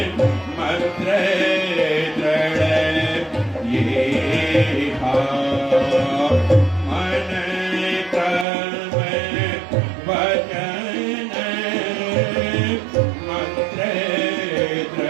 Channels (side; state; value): left; drops out; at 8.5 s